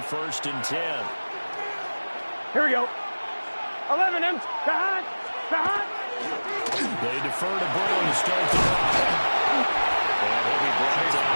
1st and 10. Here we go. 11 M. Behind. They defer to Brown to start the drive. And he'll be brought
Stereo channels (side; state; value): both; inverted; correlation -1.00